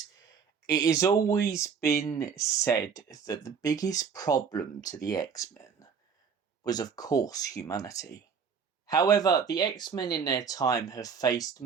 it has always been said that the biggest problem to the X-Men was, of course, humanity. However, the X-Men in their time have faced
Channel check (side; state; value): left; quieter; 6.3 dB